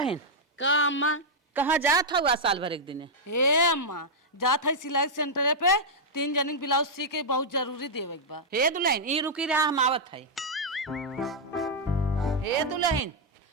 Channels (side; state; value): both; normal; correlation -0.06